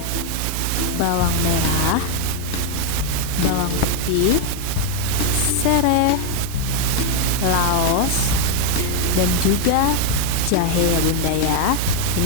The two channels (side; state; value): both; different; correlation 0.01